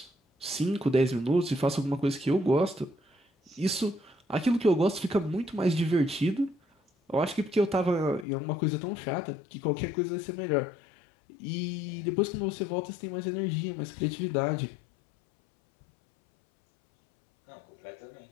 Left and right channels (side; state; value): right; drops out; at 8.2 s